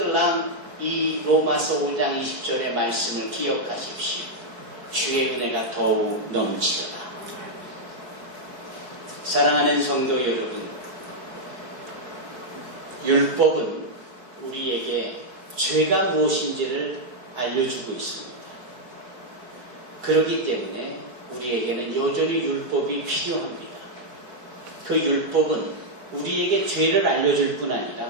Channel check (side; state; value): left; late; 4.6 ms